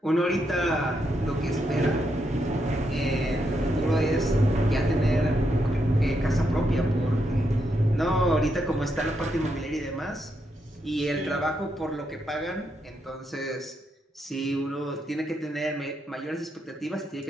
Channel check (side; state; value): both; normal; correlation 0.80